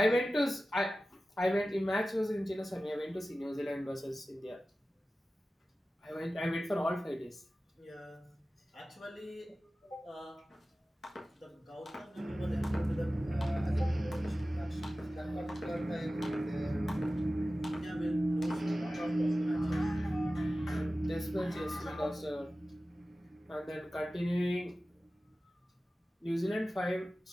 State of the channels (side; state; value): both; normal; correlation 0.95